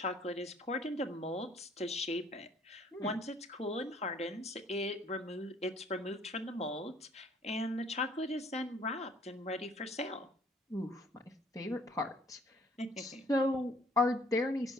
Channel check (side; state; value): both; normal; correlation 0.59